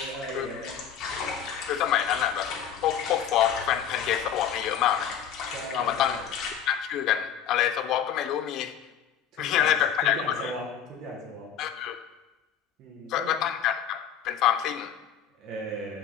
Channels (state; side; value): quieter; right; 8.8 dB